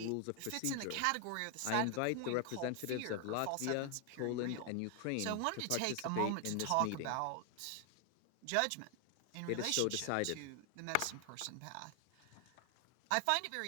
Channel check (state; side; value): different; both; correlation 0.00